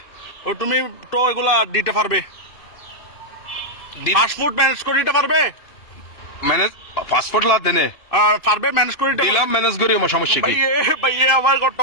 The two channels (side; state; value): right; late; 2.6 ms